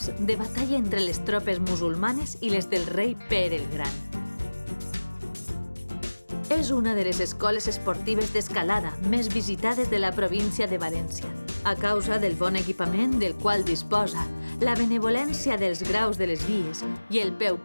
de batalla entre les tropes musulmanes i les del rei Pere el Gran. És una de les escoles esportives d'escalada més visitades de la província de València, a causa del bon equipament del qual disposa, la benevolència dels graus de les vies i el peu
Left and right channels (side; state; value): both; inverted; correlation -1.00